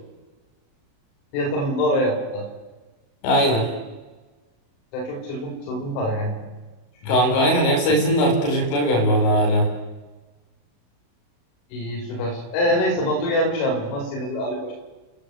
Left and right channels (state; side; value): late; right; 35 ms